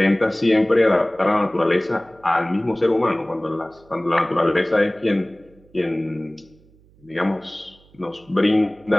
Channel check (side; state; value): right; noise; hum, 29 dB below the sound